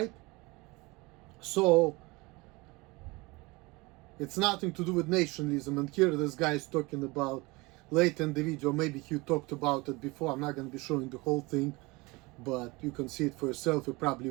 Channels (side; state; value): left; quieter; 24.2 dB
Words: So it's nothing to do with nationalism. And here this guy is talking about, late in the video, maybe he talked about it before. I'm not going to be showing the whole thing, but you can see it for yourself. You probably